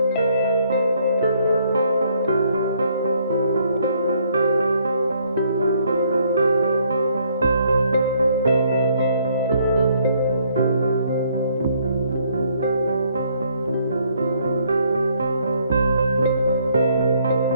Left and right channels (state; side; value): inverted; both; correlation -0.68